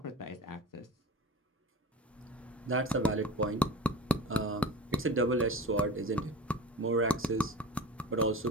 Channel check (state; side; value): normal; both; correlation 0.33